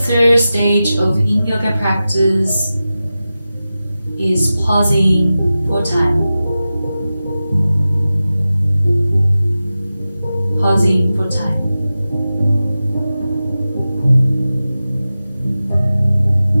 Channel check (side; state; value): both; inverted; correlation -0.94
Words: stage of Yin Yoga practice is pausing for time. Pausing for time.